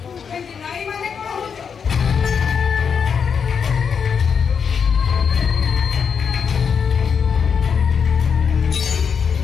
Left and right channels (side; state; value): right; quieter; 6.6 dB